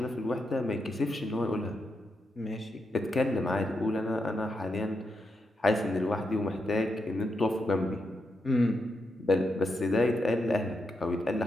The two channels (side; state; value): both; normal; correlation 0.84